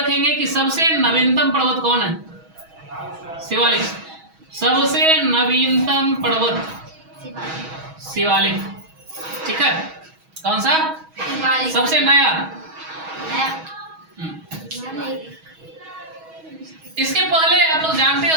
कि सबसे नवीनतम पर्वत कौन है? शिवालिक, सबसे नवीनतम पर्वत शिवालिक, ठीक है। कौन सा? सबसे नया। इसके पहले आप लोग जानते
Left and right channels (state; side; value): late; left; 6.2 ms